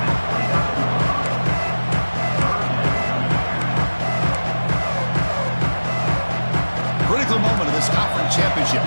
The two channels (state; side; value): inverted; both; correlation -1.00